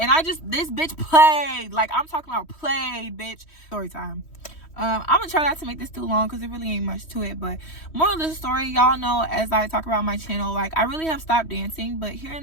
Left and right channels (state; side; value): late; right; 3.1 ms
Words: this bitch played. Like, I'm talking about played, bitch. Story time. I'm gonna try not to make this too long because it really ain't much to it, but moral of the story, y'all know, as I talk about my channel, like, I really have stopped dancing, but here